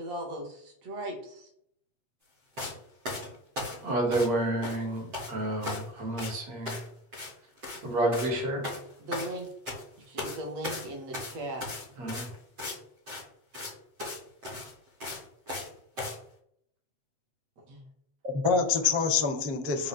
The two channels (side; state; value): left; late; 7.8 ms